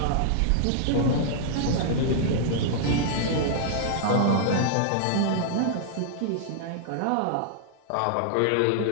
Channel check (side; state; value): both; different; correlation -0.01